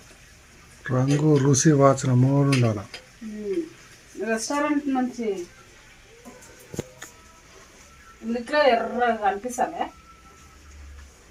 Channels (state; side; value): identical; both; correlation 1.00